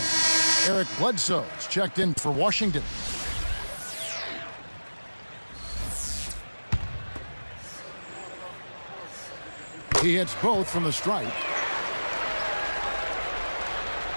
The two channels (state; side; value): inverted; both; correlation -1.00